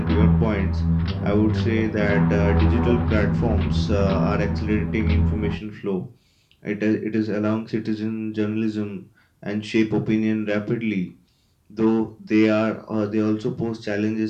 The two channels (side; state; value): both; identical; correlation 1.00